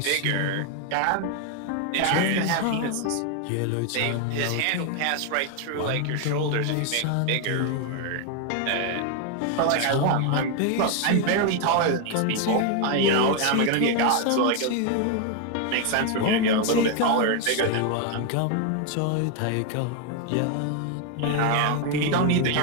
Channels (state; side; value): different; both; correlation 0.01